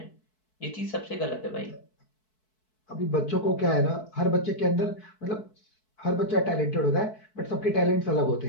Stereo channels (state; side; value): late; right; 4.6 ms